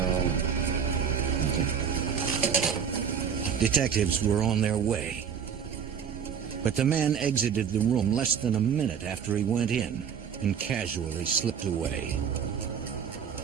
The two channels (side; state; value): left; quieter; 7.4 dB